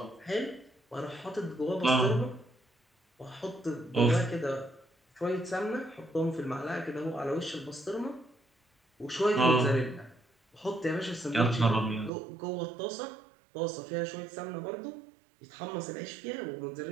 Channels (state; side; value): drops out; left; at 12.1 s